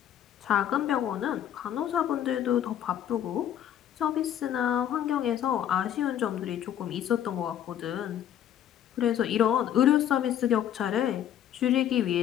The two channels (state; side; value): quieter; right; 10.4 dB